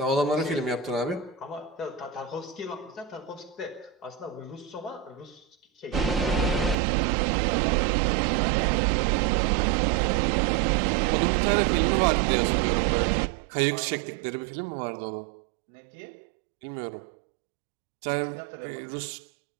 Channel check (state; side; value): drops out; left; at 6.8 s